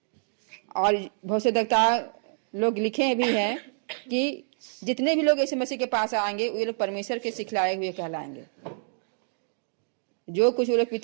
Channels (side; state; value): left; silent; digital silence